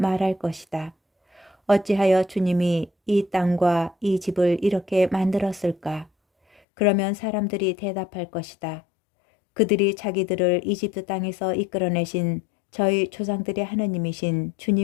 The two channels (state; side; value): drops out; right; at 6.6 s